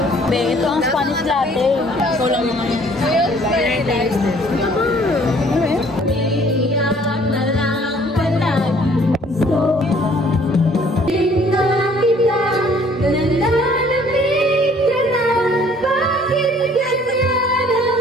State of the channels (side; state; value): both; normal; correlation 0.58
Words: Be, ito ang Spanish latte. So lang naman.